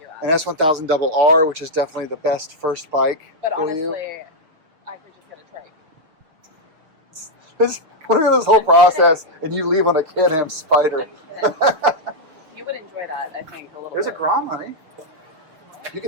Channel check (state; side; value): late; left; 6.5 ms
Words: app. An S1000 Double R, which is definitely the best first bike But for honestly, you. I could just get a trike. Look at this whole process, and you leave on a Can-Am Spider. I'm kidding. You would enjoy that, I think, a little There's a bit. Grom, honey. You